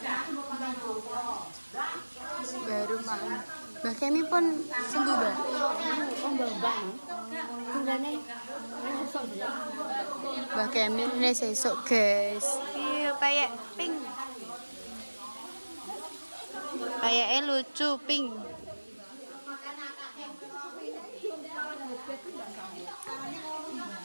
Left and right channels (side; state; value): both; inverted; correlation -1.00